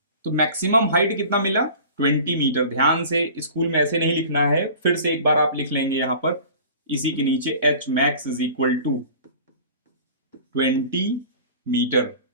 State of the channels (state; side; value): inverted; both; correlation -0.42